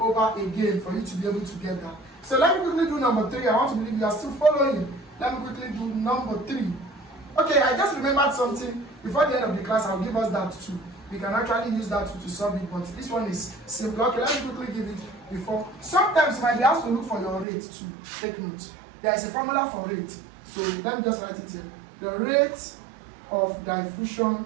again for you to be able to get that. So let me quickly do number 3. I want to believe you are still following. Let me quickly do number 3. Okay, I just remembered something. Before the end of the class, I'll give us that too. We can actually use that to solve it, but this one is simple. Okay, let me quickly give it before. Sometimes you might be asked to look for your rate too. Take note. There is a formula for rate. So let me just write it here. The rate of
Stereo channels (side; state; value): left; drops out; at 17.4 s